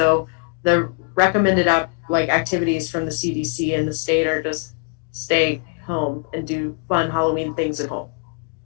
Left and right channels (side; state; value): right; quieter; 36.5 dB